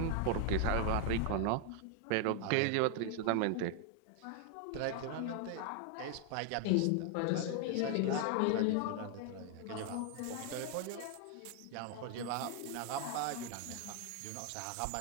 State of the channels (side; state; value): both; different; correlation 0.00